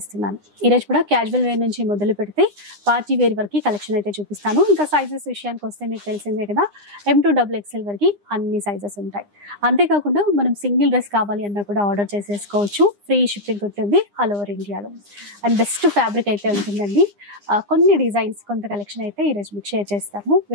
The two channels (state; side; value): late; left; 9.8 ms